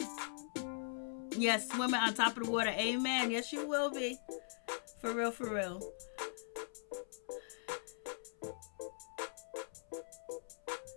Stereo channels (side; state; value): right; silent; 50 dB below the other